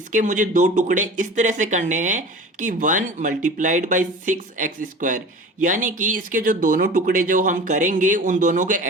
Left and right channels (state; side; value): normal; both; correlation 0.38